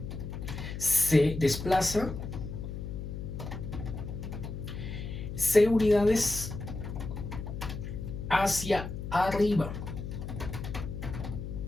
se desplaza c unidades hacia arriba.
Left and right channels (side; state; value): left; noise; hum, 7 dB below the sound